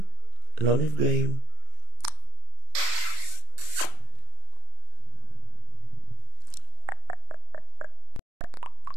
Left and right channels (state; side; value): late; left; 32 ms